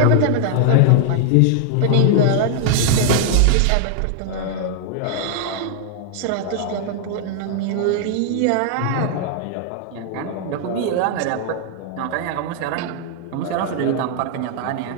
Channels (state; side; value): different; both; correlation -0.01